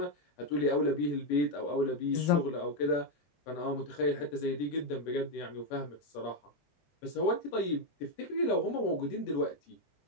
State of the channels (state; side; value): late; right; 21 ms